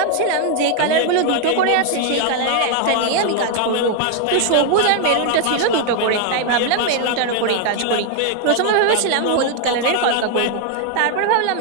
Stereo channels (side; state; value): both; different; correlation 0.00